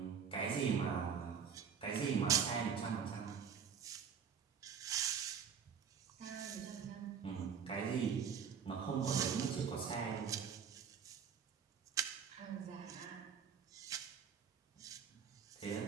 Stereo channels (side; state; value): left; quieter; 7.0 dB